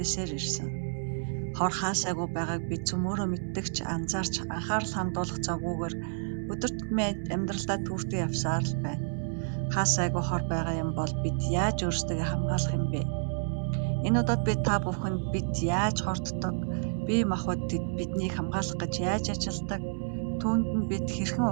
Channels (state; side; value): silent; left; 58 dB below the other